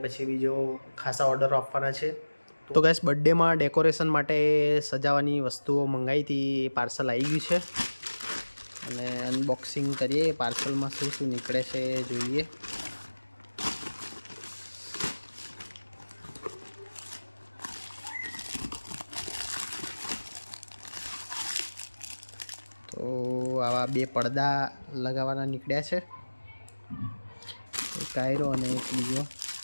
પછી બીજો ખાસા ઓર્ડરો આપવાના છે. તો ગાઈસ, બર્થડેમાં ડેકોરેશન માટે સજાવવાની વસ્તુઓ મંગાવી હતી, પાર્સલ આવી ગયું છે અને અનબોક્સિંગ કરીએ. પાર્સલમાં શું શું નીકળે છે જોઈએ. તો આવા 2 પડદા લગાવવાના નીકળ્યા છે, એક આયરો અને એક બીજો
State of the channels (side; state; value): both; inverted; correlation -1.00